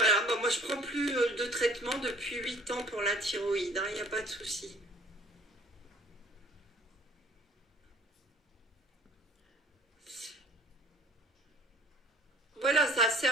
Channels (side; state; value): both; normal; correlation 0.52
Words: bah, moi je prends plus de traitement depuis 8 ans pour la thyroïde, il n'y a pas de souci. Voilà, ça